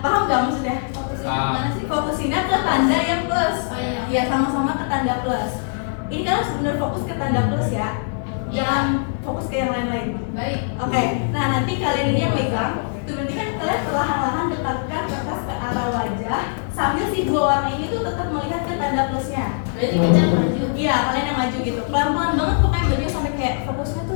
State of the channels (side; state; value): right; silent; 64 dB below the other